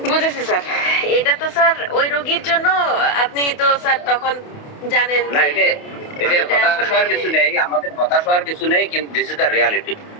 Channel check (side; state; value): right; late; 28 ms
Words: বুঝেছি স্যার। এটা তো স্যার ওই রোগীর জন্য আপনি তো স্যার তখন জানেন না, যে এটা হতাশ হওয়ার কিছু নেই, আমাদের হতাশ হওয়ার কিছু নেই, কিন্তু this is the reality.